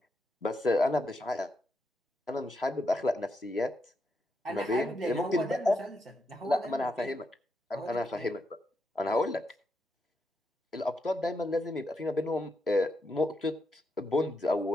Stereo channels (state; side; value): normal; both; correlation 0.82